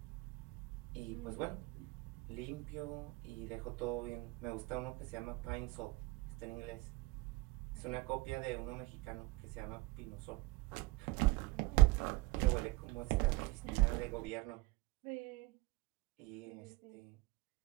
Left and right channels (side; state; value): left; quieter; 21.7 dB